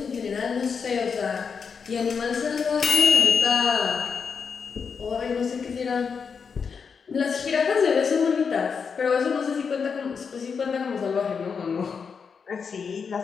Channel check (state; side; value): quieter; right; 5.9 dB